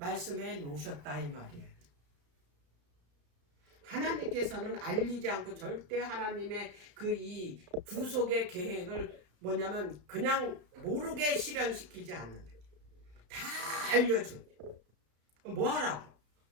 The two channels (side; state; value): left; late; 33 ms